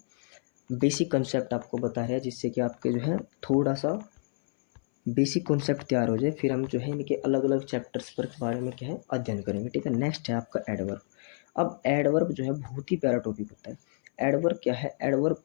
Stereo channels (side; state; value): right; silent; 59 dB below the other